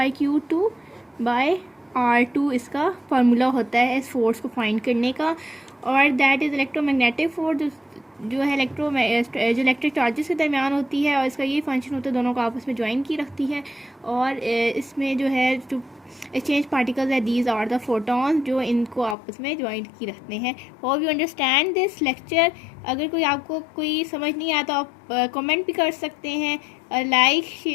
इसका फार्मूला होता है इस फोर्स को फाइंड करने का। और दैट इज़ इलेक्ट्रोमैग्नेटिक फोर्स, जो है जो इलेक्ट्रिक चार्जेस के दरमियान होती है, और इसका ये फंक्शन होता है, दोनों को आपस में ज्वाइन की रखती है। और इसमें जो है जो एक्सचेंज पार्टिकल्स है, दीज आर द फोटॉन्स, जो इनको आपस में ज्वाइन की रखते हैं। Hope you understand this lecture. अगर कोई आपको कोई समझ नहीं आया तो आप कमेंट भी कर सकते हैं। Like,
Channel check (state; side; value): drops out; right; at 19.2 s